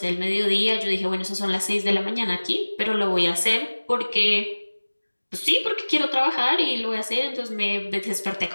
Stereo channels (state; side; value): inverted; both; correlation -1.00